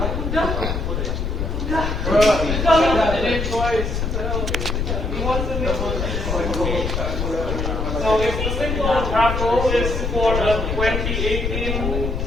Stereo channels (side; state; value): left; noise; rumble, 1 dB below the sound